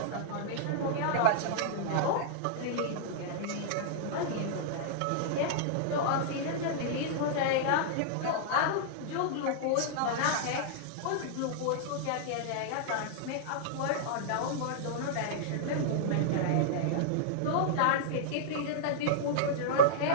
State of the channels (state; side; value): different; both; correlation -0.02